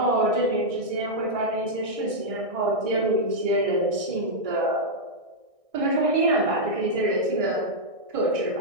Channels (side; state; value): left; late; 1.6 ms